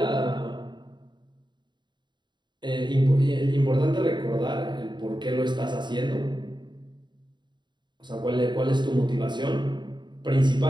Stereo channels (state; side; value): late; left; 0.22 ms